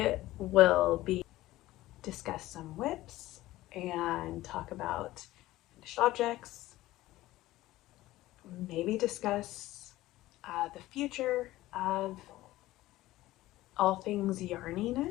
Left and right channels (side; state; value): right; quieter; 16.7 dB